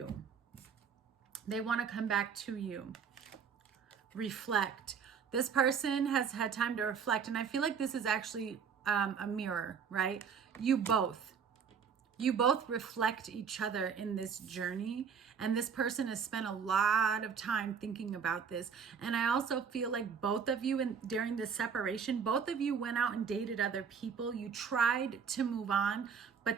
They want to come back to you. Reflect. This person has had time to reflect, and I feel like this is actually a mirror, right? You both. You both reflect each other in this journey, and this person has spent a lot of time thinking about this. And I also feel like both of you, during this separation, both of you went out and dated other people. You tried to move on, but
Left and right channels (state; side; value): quieter; left; 6.6 dB